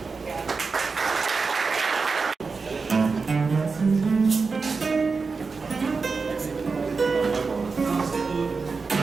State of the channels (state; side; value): quieter; left; 4.6 dB